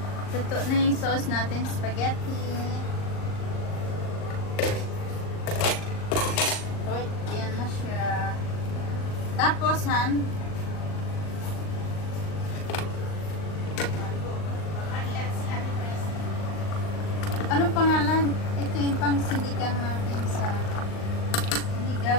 Luto na yung sauce natin, spaghetti. So, yan na siya. Tapos, Han, ano pangalan? Ito yung pang sinigang natin sa sinigang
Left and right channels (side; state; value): right; late; 39 ms